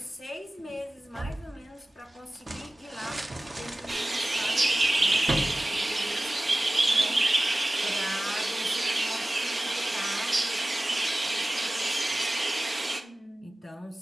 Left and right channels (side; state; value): both; normal; correlation 0.97